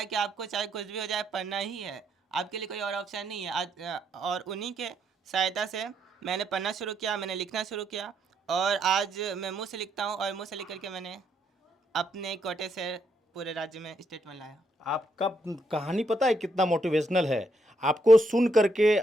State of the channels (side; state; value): both; normal; correlation 0.76